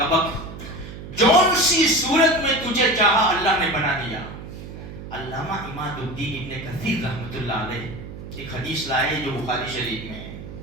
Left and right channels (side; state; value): right; noise; hum, 12 dB below the sound